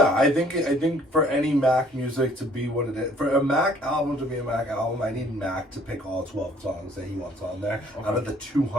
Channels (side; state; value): both; normal; correlation 0.59